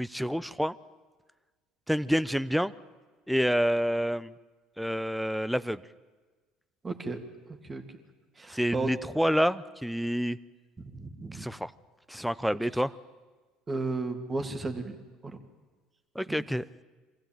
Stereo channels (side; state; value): both; normal; correlation 0.97